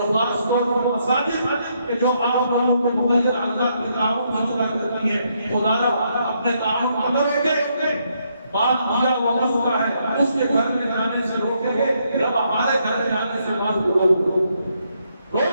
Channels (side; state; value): both; inverted; correlation -0.75